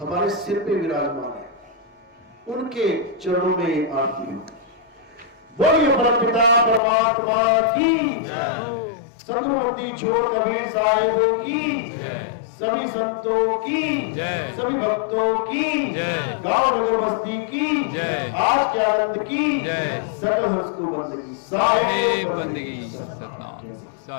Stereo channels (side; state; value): right; drops out; at 6.8 s